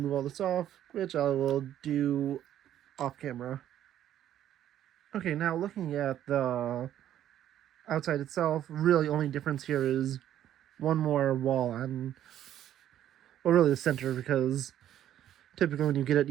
all this off, which I will do off camera. Okay, now looking at the outside itself, really only difference here is one more wall on, well, really the center, because typically when you get it,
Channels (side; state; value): left; quieter; 11.4 dB